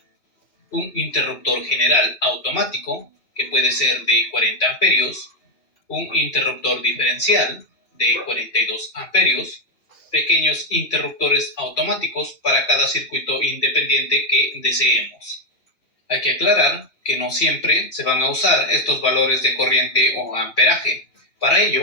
Un interruptor general automático, que puede ser de 40 amperios, un interruptor diferencial de 42 amperios, pequeños interruptores automáticos para cada circuito independiente que deseemos. Hay que aclarar que no siempre se van a usar estos valores de corriente o amperaje. Para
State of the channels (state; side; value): late; right; 2.8 ms